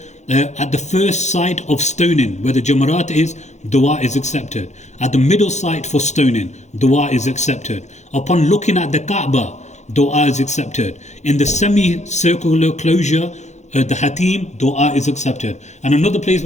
At the first site of stoning, where the Jamarat is, dua is accepted. At the middle site for stoning, dua is accepted. Upon looking at the Kaaba, dua is accepted. In the semicircular closure, the Hatim, dua is accepted. And another place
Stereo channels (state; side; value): late; right; 0.33 ms